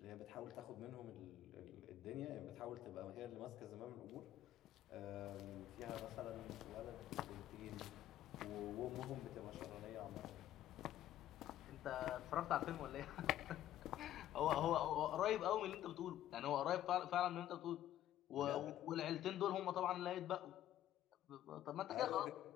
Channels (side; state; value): right; quieter; 12.5 dB